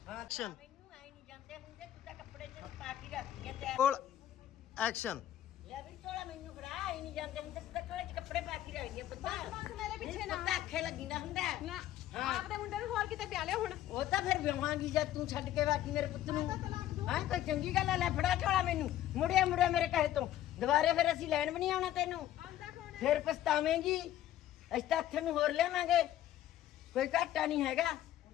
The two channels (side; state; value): right; quieter; 12.7 dB